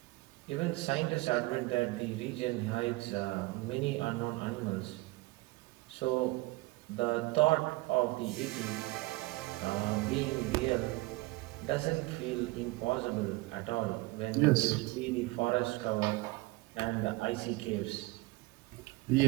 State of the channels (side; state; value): left; quieter; 21.9 dB